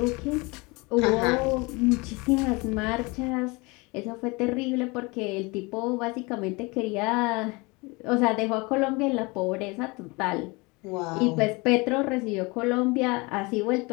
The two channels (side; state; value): right; quieter; 26.2 dB